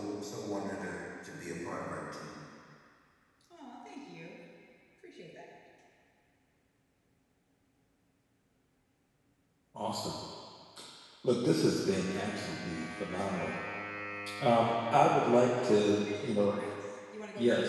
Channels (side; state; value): both; identical; correlation 1.00